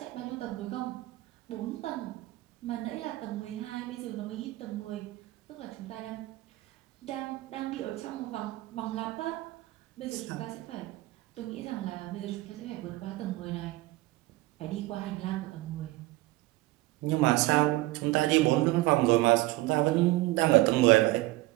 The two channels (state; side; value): quieter; left; 18.8 dB